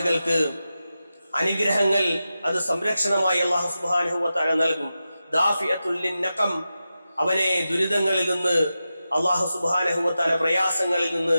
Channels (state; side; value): inverted; both; correlation -0.91